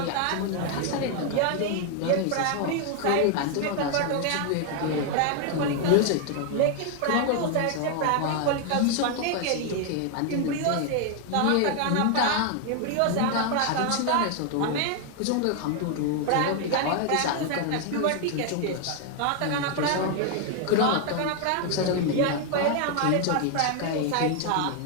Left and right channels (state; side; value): different; both; correlation 0.01